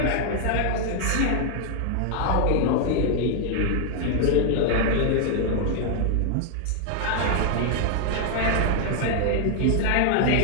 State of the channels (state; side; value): different; both; correlation 0.00